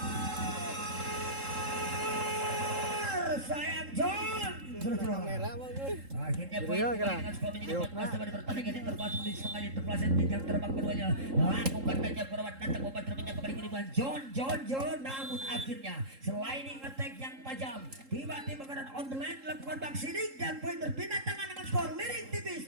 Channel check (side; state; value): left; late; 3.7 ms